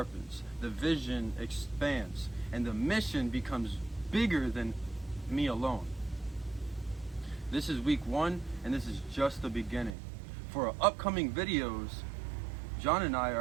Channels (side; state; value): left; drops out; at 10.0 s